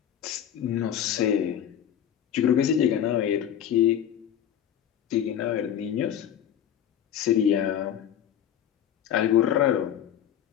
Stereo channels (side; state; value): right; quieter; 9.9 dB